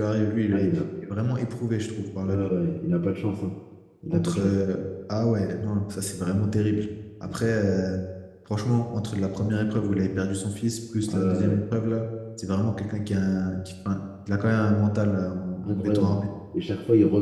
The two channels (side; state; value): both; identical; correlation 1.00